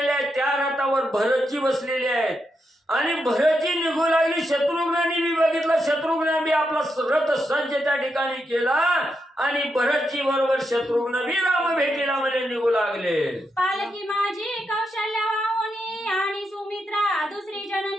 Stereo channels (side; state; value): both; normal; correlation 0.84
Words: आहेत. त्या रथावर भरतजी बसलेले आहेत. आणि भरतजी निघू लागली. शत्रुघ्नांनी बी बघितलं, शत्रुघ्न बी आपला रथ सज्ज त्या ठिकाणी केला आणि भरतजी बरोबर शत्रुघ्न बी राम भेटीला म्हणजे निघू लागले. पालकी माझी कौशल्या वाहुनी आणि सुमित्रा दुसरी